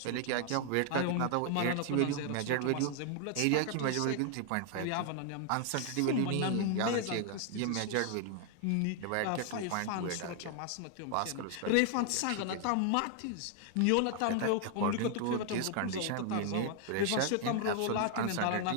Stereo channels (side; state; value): both; different; correlation 0.00